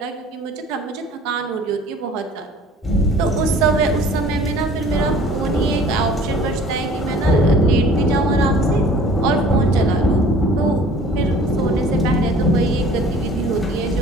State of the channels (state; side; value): normal; both; correlation 0.49